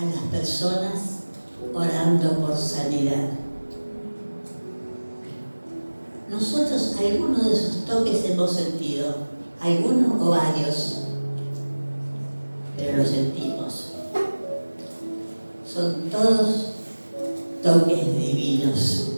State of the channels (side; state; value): both; inverted; correlation -1.00